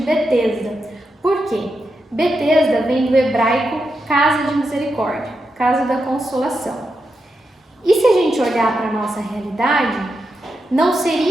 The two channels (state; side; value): normal; both; correlation 0.86